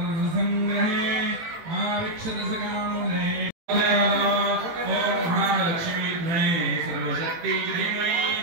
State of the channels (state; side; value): late; left; 18 ms